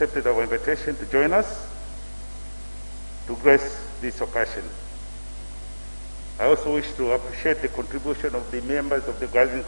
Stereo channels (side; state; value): both; inverted; correlation -1.00